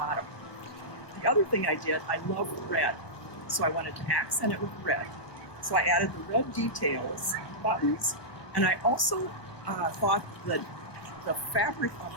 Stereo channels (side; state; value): right; late; 1.3 ms